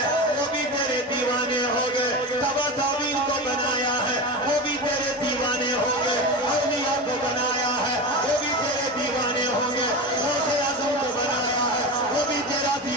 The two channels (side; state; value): both; normal; correlation 0.24